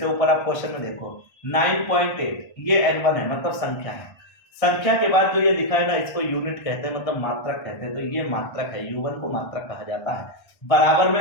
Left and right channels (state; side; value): late; right; 1.3 ms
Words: ऊपर आप क्वेश्चन में देखो 9.8, ये N1 है, मतलब संख्या है। संख्या के बाद जो ये लिखा है ना, इसको यूनिट कहते हैं, मतलब मात्रक कहते हैं। तो ये मात्रक है, U1 को मात्रक कहा जाता है। बराबर